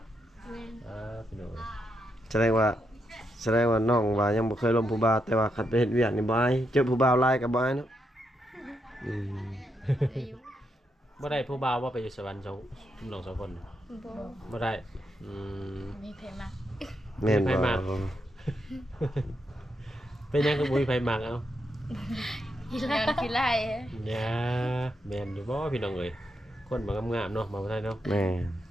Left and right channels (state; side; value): normal; both; correlation 0.82